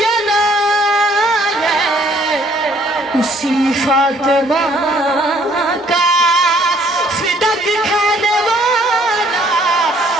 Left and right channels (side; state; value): both; normal; correlation 0.62